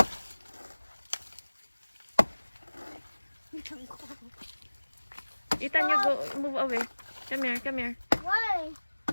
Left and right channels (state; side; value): inverted; both; correlation -1.00